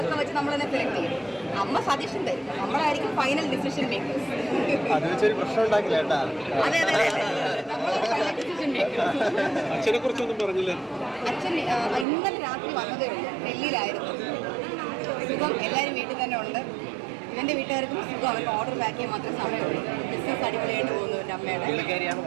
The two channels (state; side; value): drops out; left; at 12.1 s